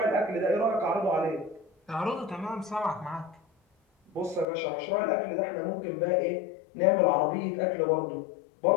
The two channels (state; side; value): drops out; right; at 4.5 s